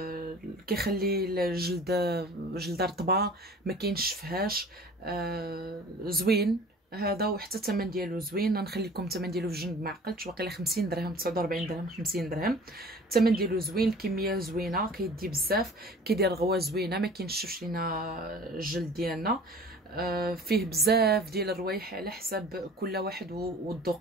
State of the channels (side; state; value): both; normal; correlation 0.45